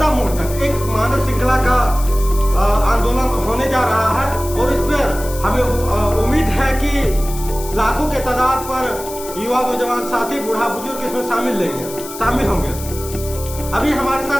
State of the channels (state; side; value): noise; left; hiss, 13 dB below the sound